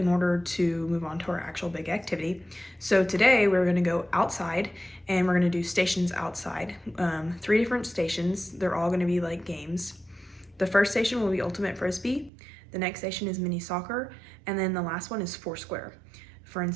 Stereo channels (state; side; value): drops out; left; at 12.3 s